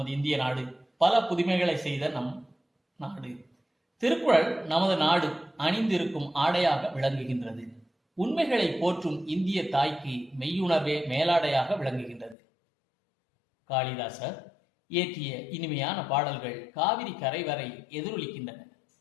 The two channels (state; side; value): drops out; right; at 12.4 s